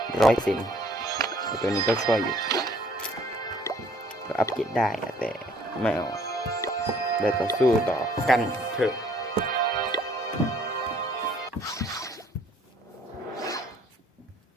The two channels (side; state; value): both; normal; correlation 0.59